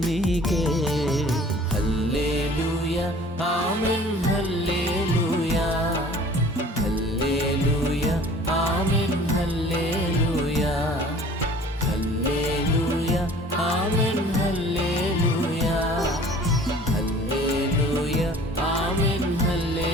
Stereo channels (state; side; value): normal; both; correlation 0.49